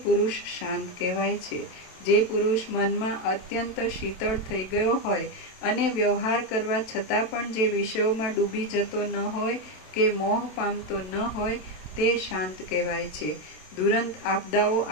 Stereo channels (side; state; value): right; late; 27 ms